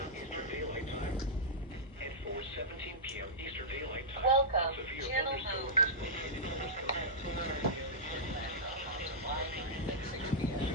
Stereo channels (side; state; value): both; normal; correlation -0.11